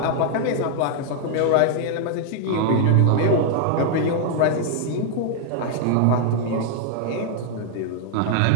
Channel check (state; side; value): different; both; correlation -0.01